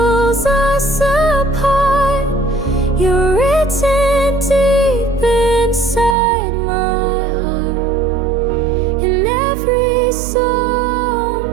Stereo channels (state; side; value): drops out; left; at 6.2 s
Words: us apart, you're written deep inside my heart. In every song,